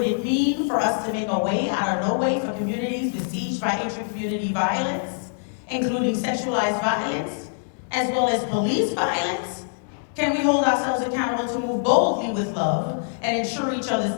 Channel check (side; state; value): right; silent; digital silence